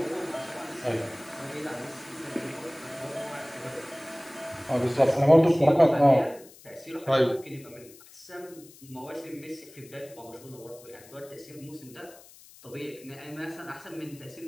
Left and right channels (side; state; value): left; noise; hiss, 22 dB below the sound